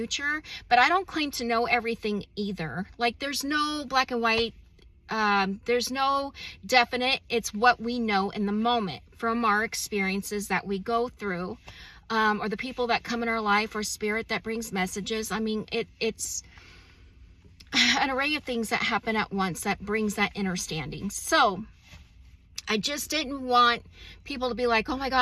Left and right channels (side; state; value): both; identical; correlation 1.00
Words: But I don't claim to know everything either. There's no black and white. There's no definite. It's what we know in the moment from our experiences that we go through. Or the people that come in our life, or spirit that brings messages. I mean, it's an array of things that happen at once that brings that understanding. So I just didn't want people to be like, oh my